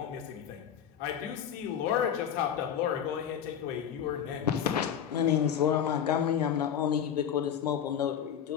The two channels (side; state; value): right; quieter; 8.9 dB